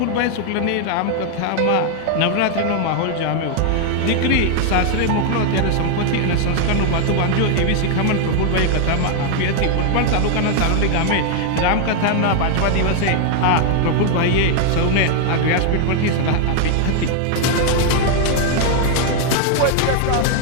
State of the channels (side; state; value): both; different; correlation 0.00